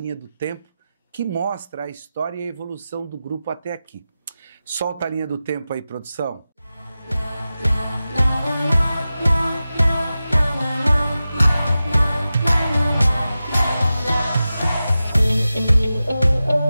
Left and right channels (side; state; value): both; inverted; correlation -0.94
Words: do tempo que mostra a história e a evolução do grupo até aqui. Solta a linha do tempo aí, produção.